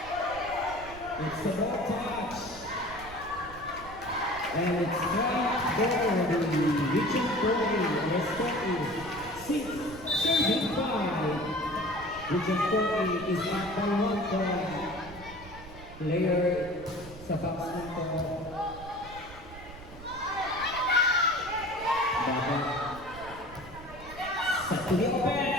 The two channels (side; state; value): right; noise; rumble, 16 dB below the sound